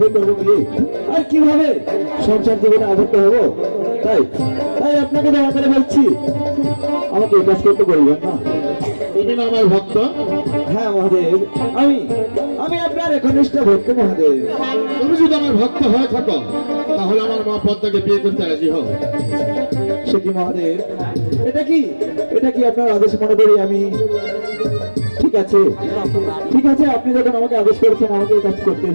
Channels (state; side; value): inverted; both; correlation -1.00